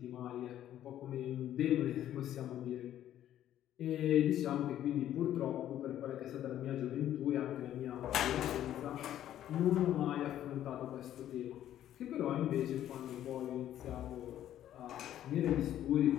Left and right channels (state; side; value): quieter; right; 11.8 dB